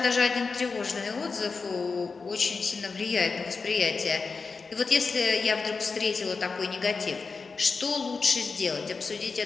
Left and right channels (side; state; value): right; quieter; 4.6 dB